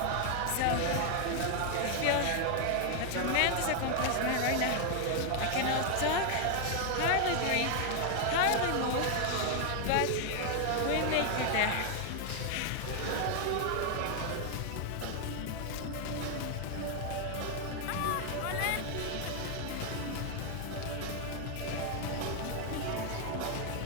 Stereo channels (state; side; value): different; both; correlation 0.00